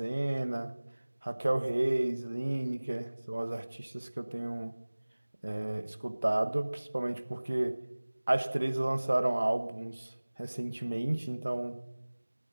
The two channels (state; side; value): inverted; both; correlation -1.00